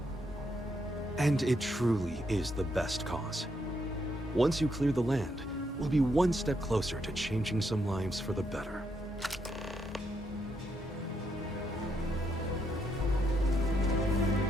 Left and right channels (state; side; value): normal; both; correlation 0.77